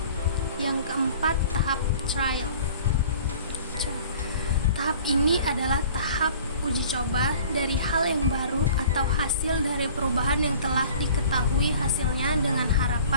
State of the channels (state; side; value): inverted; both; correlation -0.47